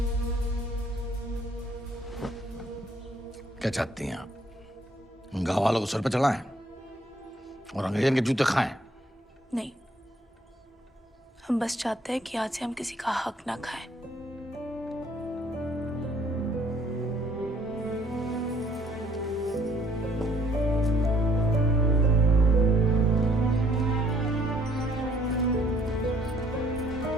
क्या चाहती हैं आप? गांव वालों को सर पे चढ़ाएं और अंग्रेजन के जूते खाएं। नहीं, हम बस चाहते हैं कि आज से हम किसी का हक ना खाएं।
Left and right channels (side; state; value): both; normal; correlation 0.62